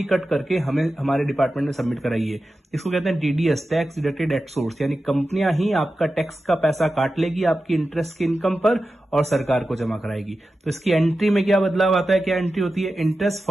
कट करके हमें हमारे डिपार्टमेंट में सबमिट कराइए। इसको कहते हैं TDS, tax deducted at source, यानी कंपनियां ही आपका टैक्स का पैसा काट लेगी आपकी इंटरेस्ट की इनकम पर और सरकार को जमा कराएगी। तो इसकी एंट्री में क्या बदलाव आता है, क्या एंट्री होती है, इंटरेस्ट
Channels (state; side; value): normal; both; correlation 0.93